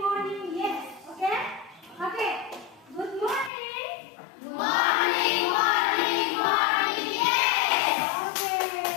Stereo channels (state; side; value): drops out; right; at 3.5 s